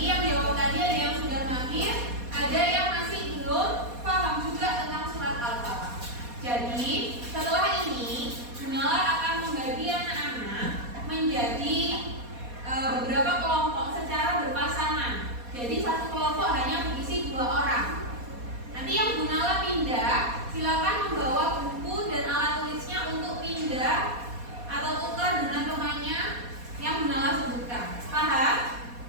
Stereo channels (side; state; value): left; late; 4.2 ms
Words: yang jawab tadi ada yang sudah mahir, ada yang masih belum paham juga tentang surat Al-Falaq. Jadi setelah ini Bunala akan membagi anak-anak menjadi beberapa kelompok secara berpasangan. Jadi satu kelompok hanya berisi 2 orang. Nanti yang Bunala pindah, silakan membawa buku dan alat tulisnya untuk pindah atau tukar dengan temannya yang Bunala sebutkan. Paham?